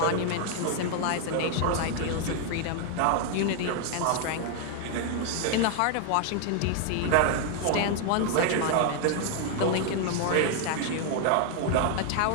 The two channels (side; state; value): both; different; correlation 0.00